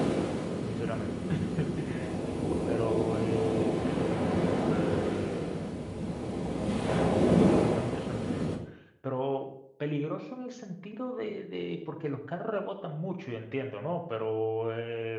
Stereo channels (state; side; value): identical; both; correlation 1.00